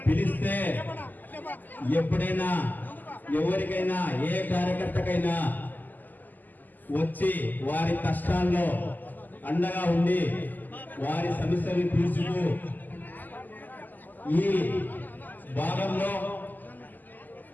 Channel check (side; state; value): right; late; 0.085 ms